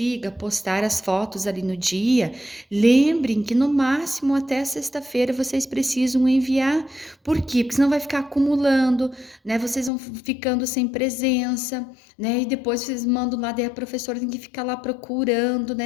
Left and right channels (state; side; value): drops out; right; at 9.9 s